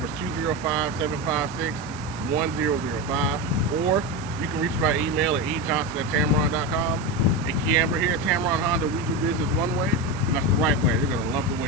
is 205-756-1005, or you can reach me by email at ejohnson@tameron.com. And KeAmber here at Tameron Honda, we do business one way, and that's the right way. You're going to love the way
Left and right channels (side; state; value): right; noise; hiss, 19 dB below the sound